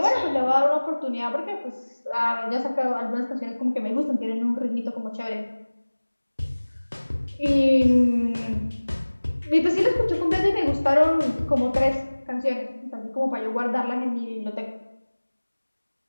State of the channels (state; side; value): inverted; both; correlation -1.00